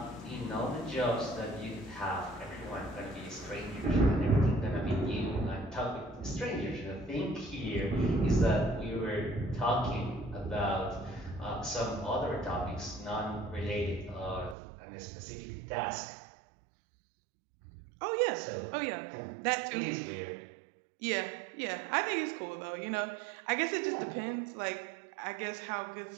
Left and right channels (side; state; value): left; drops out; at 14.6 s